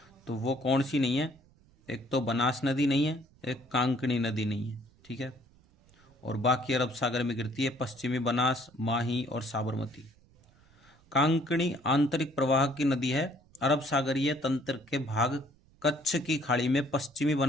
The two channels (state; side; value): noise; right; rumble, 29 dB below the sound